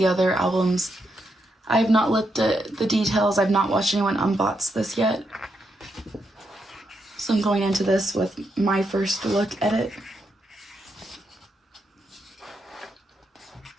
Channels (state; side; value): normal; both; correlation 0.81